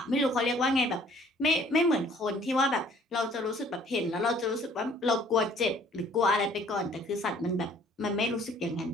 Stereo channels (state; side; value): normal; both; correlation 0.57